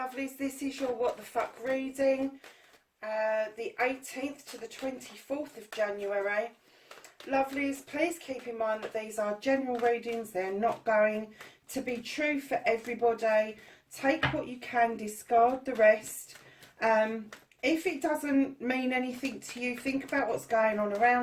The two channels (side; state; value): both; identical; correlation 1.00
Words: This is your What the Fuck reading, the 18th to the 24th of January. Lovelies, please keep in mind that these are general readings. They're not going to be true for everybody. Take what you can, discard the rest. If it doesn't mean anything to you, think about what's going on